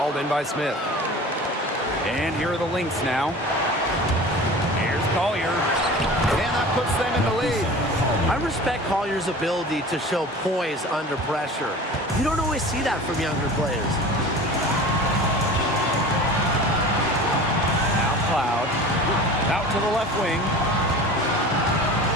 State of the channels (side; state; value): both; normal; correlation 0.38